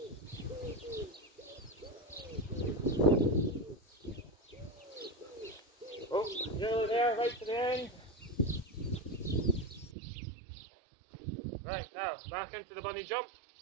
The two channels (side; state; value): left; drops out; at 10.0 s